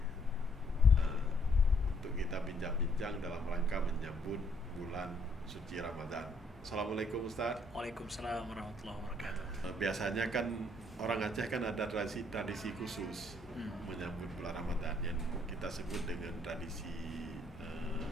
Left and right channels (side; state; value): both; normal; correlation 0.68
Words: untuk kita bincang-bincang dalam rangka menyambut bulan suci Ramadan. Assalamualaikum Ustadz. Waalaikumsalam warahmatullahi wabarakatuh. Biasanya kan orang Aceh kan ada tradisi khusus menyambut bulan Ramadan yang kita sebut dengan tradisi